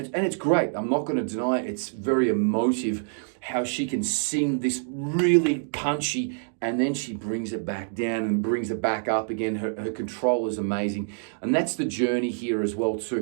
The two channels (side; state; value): left; silent; digital silence